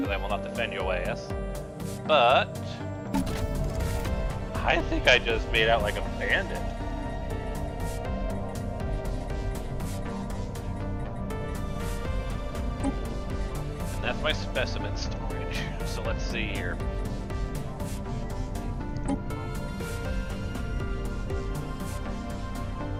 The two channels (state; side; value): identical; both; correlation 1.00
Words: I will not defend your ass. But I think I just made out like a bandit. And that's my specimen storage. So let's see here.